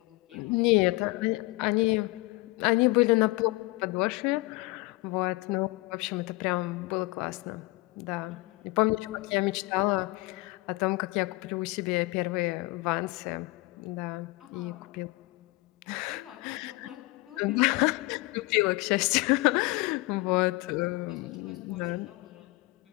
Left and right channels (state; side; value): quieter; right; 22.8 dB